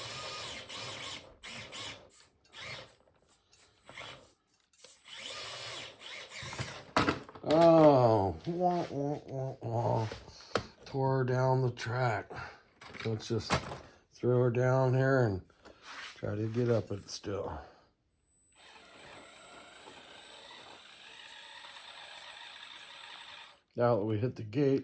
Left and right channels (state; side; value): identical; both; correlation 1.00